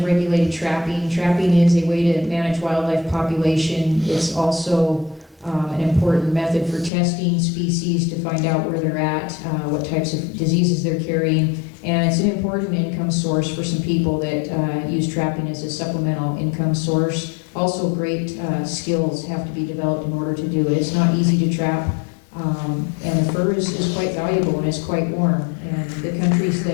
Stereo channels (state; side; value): drops out; right; at 6.9 s